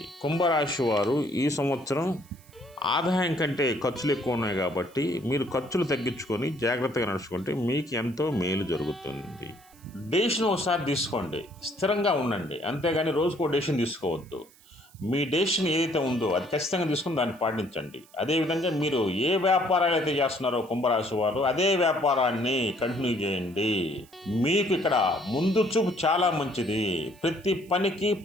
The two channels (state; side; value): noise; right; hiss, 27 dB below the sound